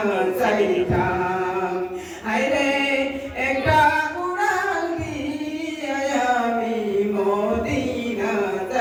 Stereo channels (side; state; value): both; identical; correlation 1.00